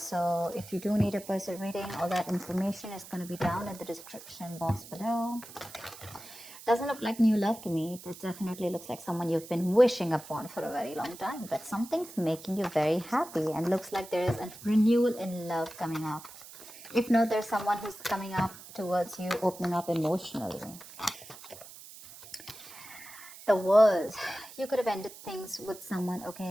if you do need a personal reading, all that information is going to be down in the description box below. Doesn't look like new love to me. It definitely looks like someone you've been wishing upon for a very long time, but something's making you very happy and looks like there is a renewal in love coming up. If not, there's someone who's coming up towards you, opening up emotionally. The World. You could have ended things with someone,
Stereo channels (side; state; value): right; noise; hiss, 16 dB below the sound